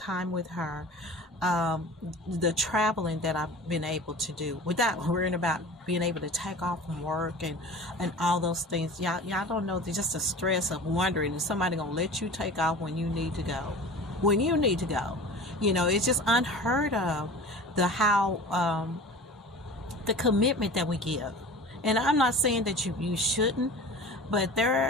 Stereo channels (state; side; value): normal; both; correlation 0.38